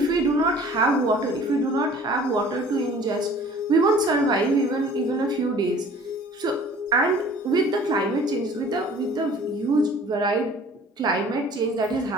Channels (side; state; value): both; normal; correlation 0.49